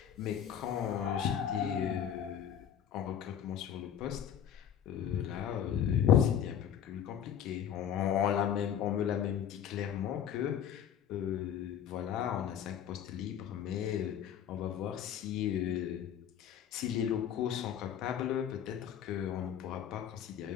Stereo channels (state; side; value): quieter; right; 9.3 dB